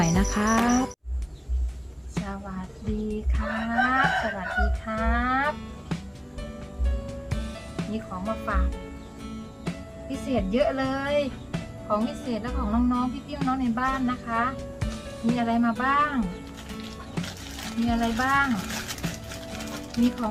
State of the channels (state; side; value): identical; both; correlation 1.00